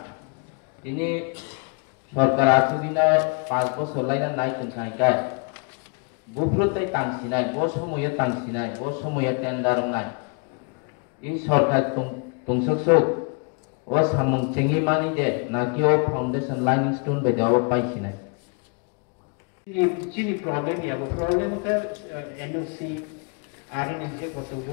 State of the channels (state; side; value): quieter; right; 36.0 dB